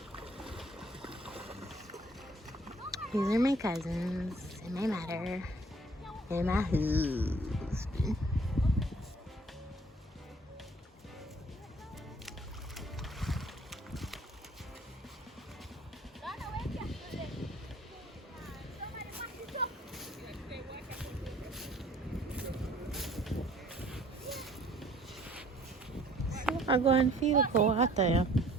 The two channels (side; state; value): both; normal; correlation 0.56